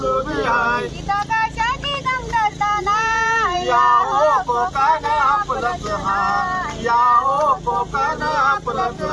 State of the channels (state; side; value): identical; both; correlation 1.00